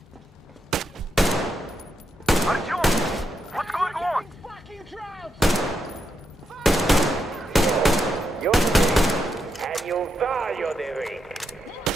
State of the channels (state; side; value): normal; both; correlation 0.83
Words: Artyom, what's going on? Fucking drought! You're weak, and you value the weak.